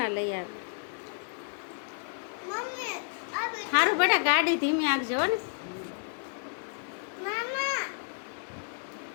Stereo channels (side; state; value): right; silent; 57 dB below the other